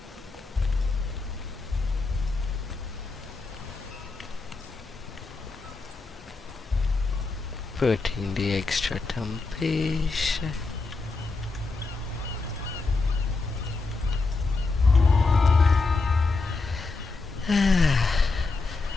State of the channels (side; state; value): right; quieter; 3.9 dB